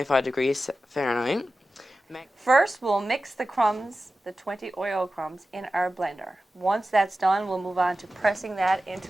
degrees Fahrenheit. first, we'll mix the crumbs, the 20 Oreo crumbs, in our blender. Once that's done, we'll move on to pressing that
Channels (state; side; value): normal; both; correlation 0.94